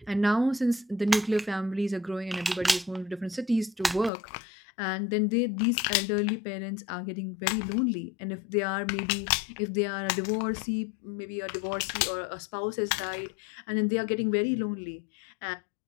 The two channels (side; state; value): right; drops out; at 4.1 s